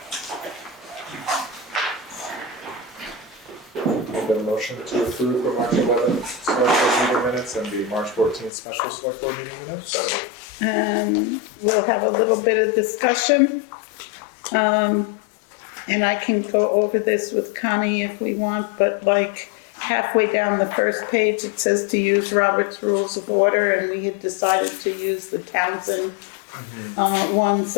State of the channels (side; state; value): right; drops out; at 8.5 s